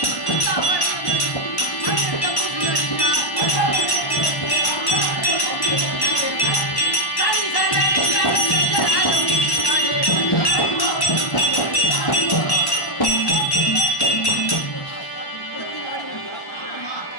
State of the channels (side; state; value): right; late; 1.1 ms